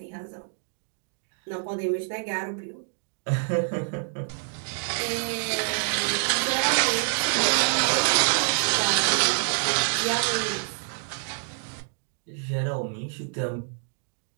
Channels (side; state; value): left; silent; 60 dB below the other